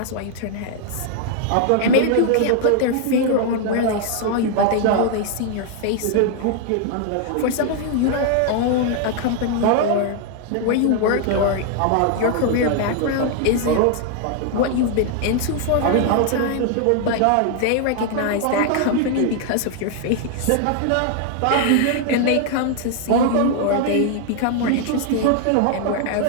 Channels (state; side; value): different; both; correlation 0.00